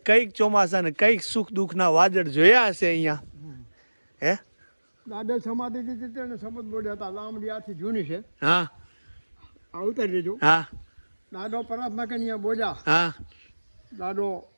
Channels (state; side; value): inverted; both; correlation -1.00